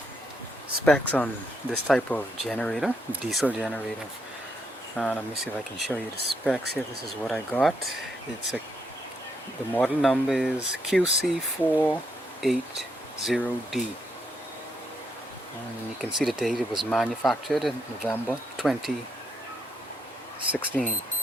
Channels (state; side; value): normal; both; correlation 0.77